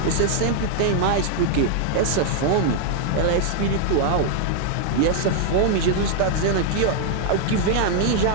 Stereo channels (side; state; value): both; different; correlation 0.00